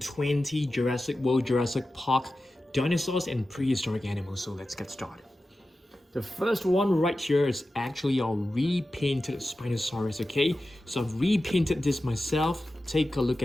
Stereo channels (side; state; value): both; normal; correlation 0.93